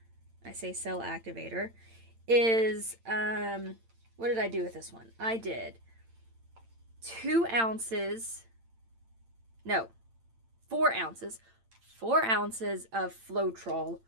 I say Cell Activator, is, what did I do with this one? I did 4 ounces of Floetrol,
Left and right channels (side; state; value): left; late; 8.8 ms